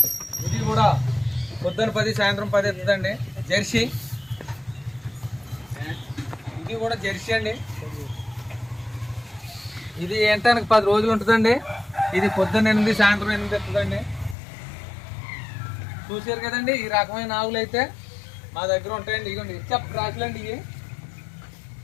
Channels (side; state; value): right; drops out; at 14.4 s